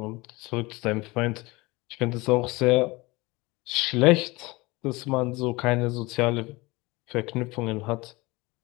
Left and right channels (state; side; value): quieter; right; 22.9 dB